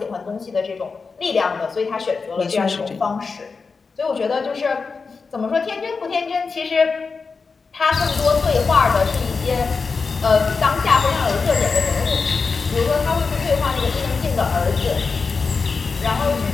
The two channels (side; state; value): right; quieter; 4.7 dB